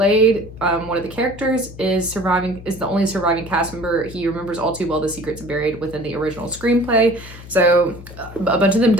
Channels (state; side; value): noise; left; hum, 16 dB below the sound